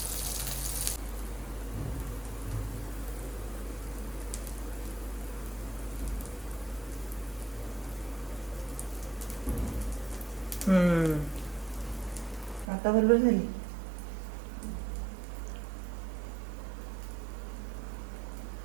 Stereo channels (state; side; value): drops out; left; at 12.7 s